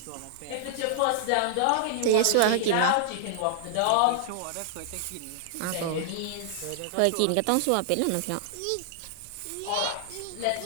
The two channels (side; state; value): both; different; correlation -0.01